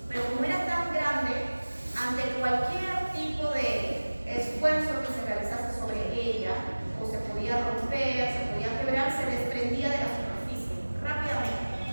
Pero como era tan grande, ante cualquier tipo de esfuerzo que se realizase sobre ella, o se podía romper, se podía quebrar, se desprendía de la superficie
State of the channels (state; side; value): inverted; both; correlation -1.00